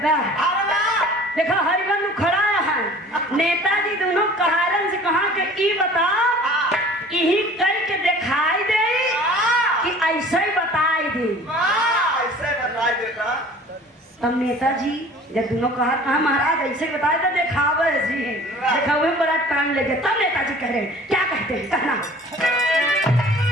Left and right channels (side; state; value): both; normal; correlation 0.47